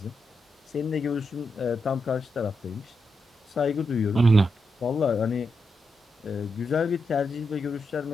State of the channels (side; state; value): both; normal; correlation 0.85